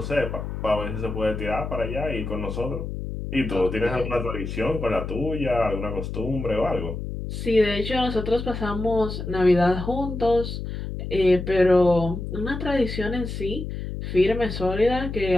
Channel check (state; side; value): noise; left; hum, 6 dB below the sound